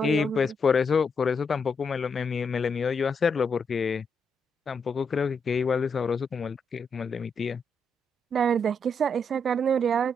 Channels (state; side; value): normal; both; correlation 0.79